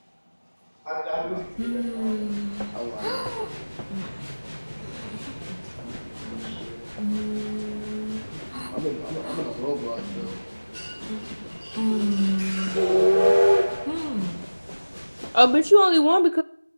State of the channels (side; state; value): both; inverted; correlation -1.00